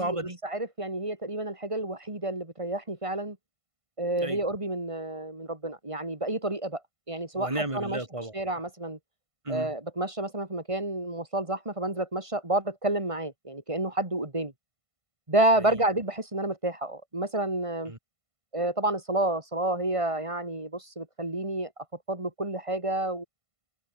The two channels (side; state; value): left; late; 1.5 ms